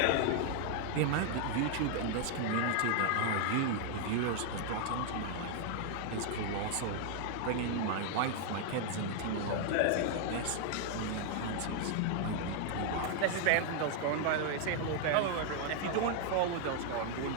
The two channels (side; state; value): both; different; correlation 0.00